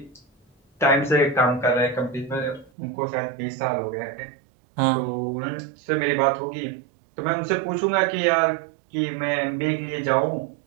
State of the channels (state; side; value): drops out; left; at 2.7 s